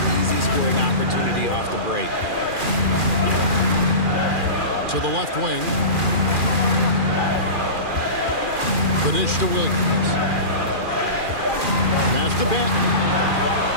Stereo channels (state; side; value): late; left; 2.4 ms